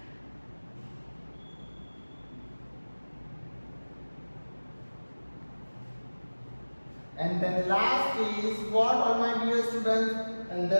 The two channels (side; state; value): both; inverted; correlation -1.00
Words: And then last is what, all my dear students? And